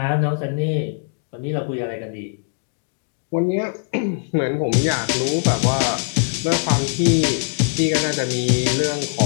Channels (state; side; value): silent; right; digital silence